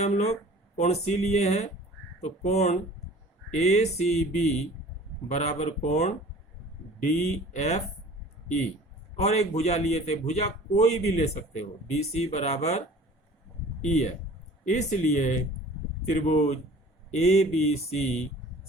लोग? कोण C लिए हैं, तो कोण ACB बराबर कोण DFE, और एक भुजा लिए थे, भुजा कोई भी ले सकते हो, BC बराबर E है। इसलिए त्रिभुज ABC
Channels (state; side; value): normal; both; correlation 0.46